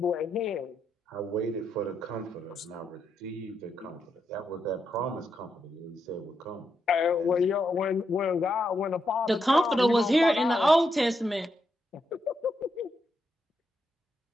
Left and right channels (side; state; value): both; normal; correlation 0.82